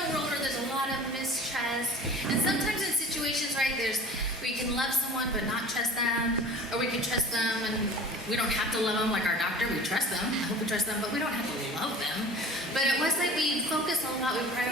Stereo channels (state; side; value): normal; both; correlation 0.41